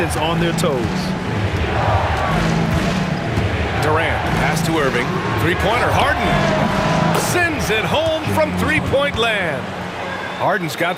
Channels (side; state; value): both; identical; correlation 1.00